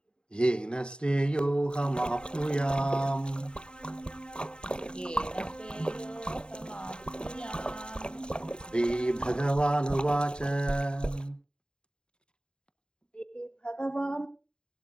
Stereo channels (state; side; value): late; right; 0.050 ms